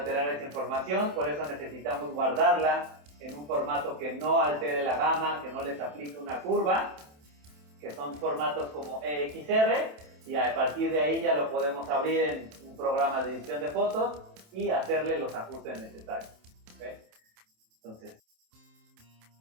esa información, por eso necesitamos guardarla en un formato que no altere la gama, que no les aplique una curva, que son formatos como EXR, y a partir de ahí ya lo podemos abrir en un programa de edición de fotos y hacerle los ajustes necesarios. ¿Okay? Entonces,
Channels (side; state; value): left; late; 27 ms